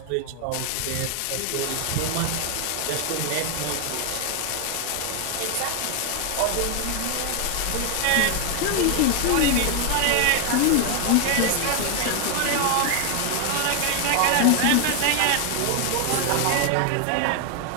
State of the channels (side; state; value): both; different; correlation 0.01